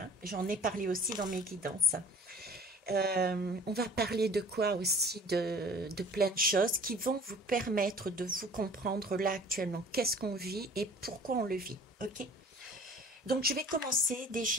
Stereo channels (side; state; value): both; normal; correlation 0.47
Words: j'en ai parlé aussi dans mes guidances. On va parler de quoi aussi, de plein de choses qui vont vous permettre de vous comprendre là actuellement, qu'est-ce qu'on vit et pourquoi on le vit, ok? Donc, je vais commencer